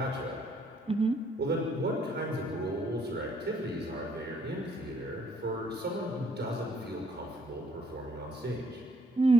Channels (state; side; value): normal; both; correlation 0.66